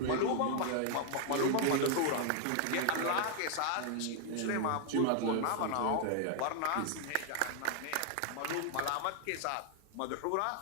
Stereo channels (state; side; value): different; both; correlation 0.00